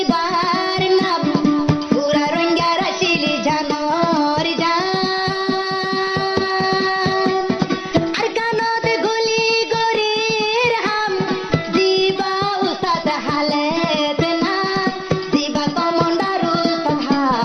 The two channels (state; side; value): identical; both; correlation 1.00